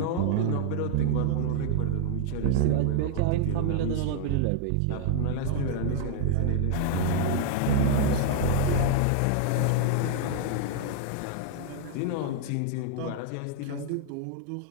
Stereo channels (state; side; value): different; both; correlation 0.00